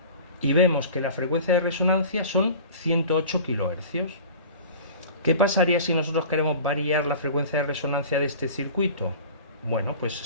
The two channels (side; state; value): both; inverted; correlation -0.40